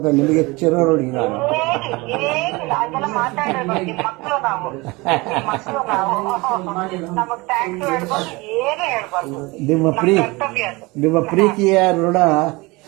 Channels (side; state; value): left; quieter; 24.0 dB